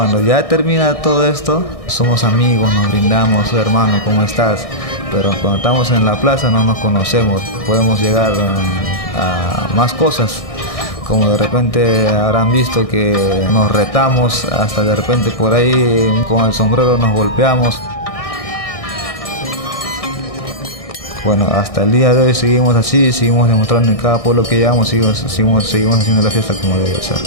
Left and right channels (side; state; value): right; late; 1.6 ms